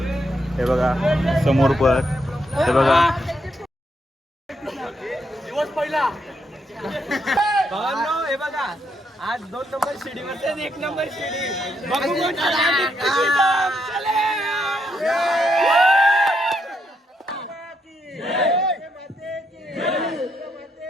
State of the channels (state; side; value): normal; both; correlation 0.78